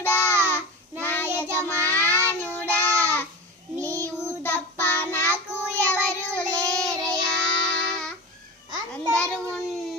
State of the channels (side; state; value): both; normal; correlation 0.28